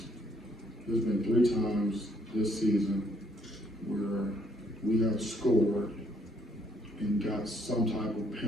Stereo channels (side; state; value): both; normal; correlation 0.69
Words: times this season where we have scored and got some type of